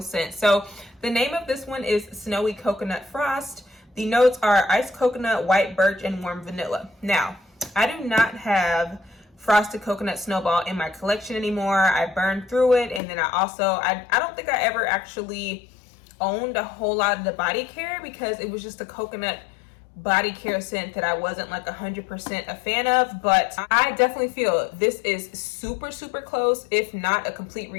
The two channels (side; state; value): right; drops out; at 13.0 s